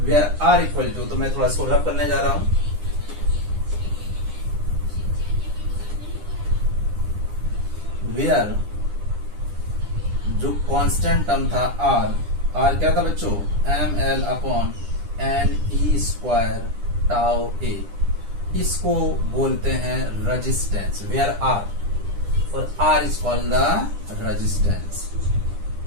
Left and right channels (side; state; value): left; late; 9.9 ms